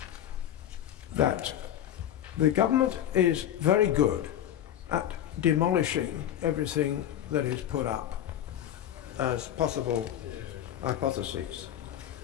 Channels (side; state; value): right; quieter; 11.0 dB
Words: that the government is very good at demolishing everything that is put up as possible hypotheses.